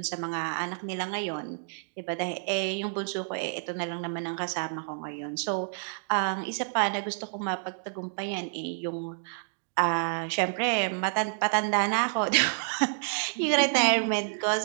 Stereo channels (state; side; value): silent; left; digital silence